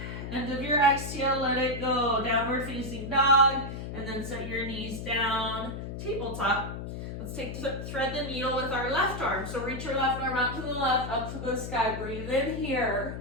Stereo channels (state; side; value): noise; left; hum, 7 dB below the sound